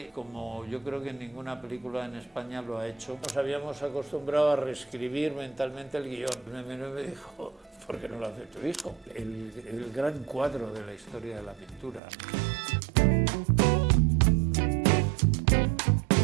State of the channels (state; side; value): drops out; left; at 12.0 s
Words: como yo creo que ninguna película en España lo ha hecho. Nos habíamos acostumbrado a reescribir mentalmente el guión. Me dijo, ¿por qué no lo hace tu hijo? El gran cuadro de la historia de la pintura.